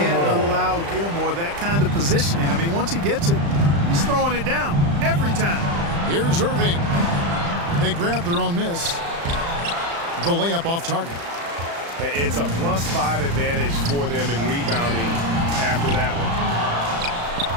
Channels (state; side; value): late; left; 35 ms